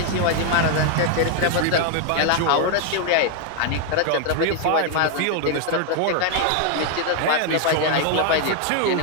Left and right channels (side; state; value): both; different; correlation 0.00